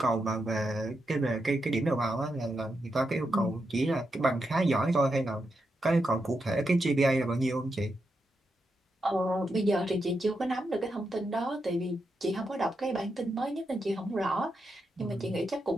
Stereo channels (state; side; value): normal; both; correlation 0.85